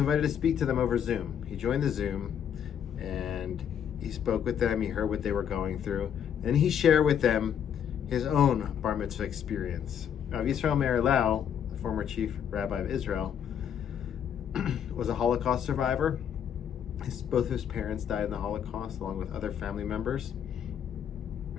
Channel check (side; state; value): right; quieter; 8.6 dB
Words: to speak to them over Zoom. He joined the Zoom and he spoke with them. He heard what they were going through. And he shared with them his own bar mitzvah experience. Rabbi Yisrael Meir Lau, the former chief rabbi of Israel, was a Holocaust survivor. Both of his parents died in the Holocaust, along with other family members.